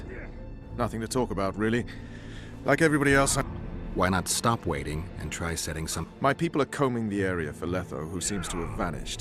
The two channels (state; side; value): identical; both; correlation 1.00